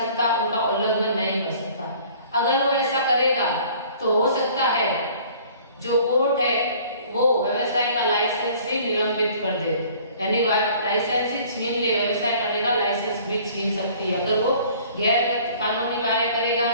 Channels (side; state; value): both; inverted; correlation -0.52